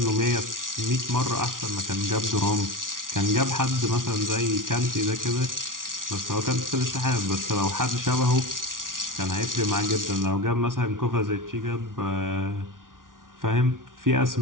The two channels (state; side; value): late; left; 0.89 ms